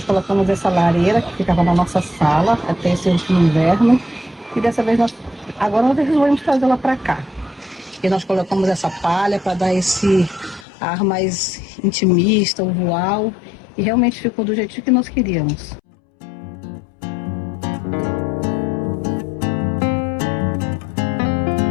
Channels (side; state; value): right; drops out; at 10.7 s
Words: colocamos essa lareira que ficava na nossa sala até esse último inverno. E dessa vez agora nós resolvemos trazê-la para cá. E nós colocamos essa palha para dar esse ar mais intimista, usual. E realmente ficou do jeitinho que nós queríamos.